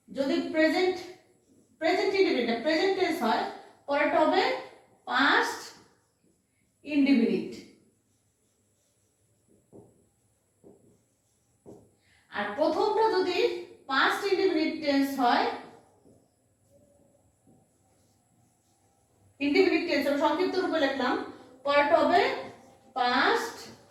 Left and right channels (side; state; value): both; identical; correlation 1.00